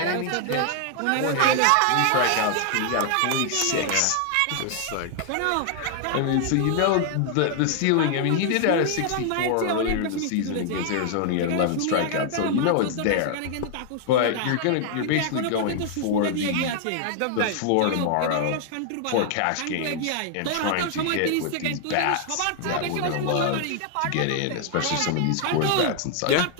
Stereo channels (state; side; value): different; both; correlation 0.00